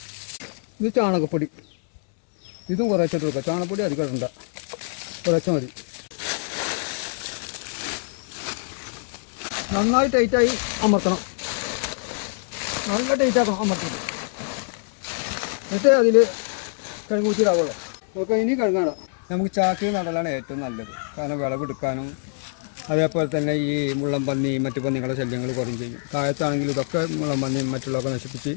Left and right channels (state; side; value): silent; right; digital silence